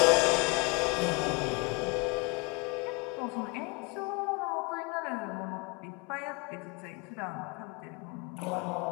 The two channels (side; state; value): right; quieter; 29.1 dB